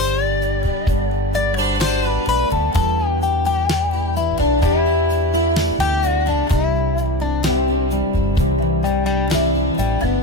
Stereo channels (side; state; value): both; normal; correlation 0.29